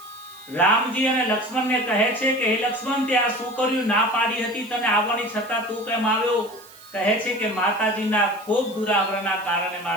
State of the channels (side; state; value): right; noise; hiss, 22 dB below the sound